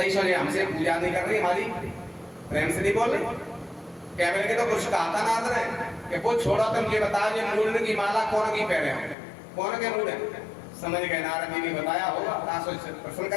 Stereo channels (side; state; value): right; drops out; at 9.2 s